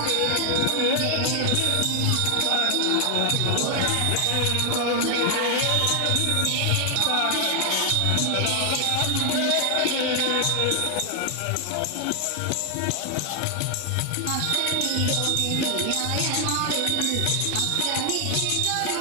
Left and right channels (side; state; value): both; different; correlation 0.00